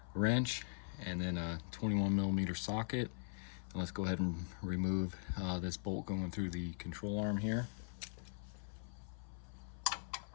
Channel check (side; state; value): right; silent; 50 dB below the other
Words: wrench and then a 21mm socket. And let's go ahead and remove this bolt going through the control arm here.